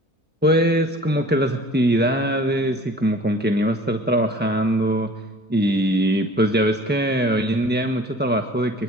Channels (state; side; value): normal; both; correlation 0.47